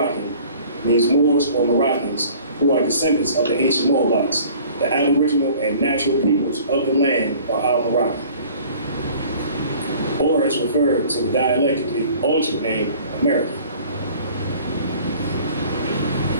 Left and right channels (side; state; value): both; inverted; correlation -0.49